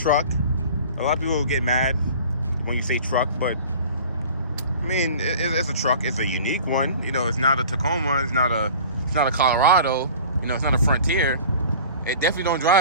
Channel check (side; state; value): both; inverted; correlation -0.43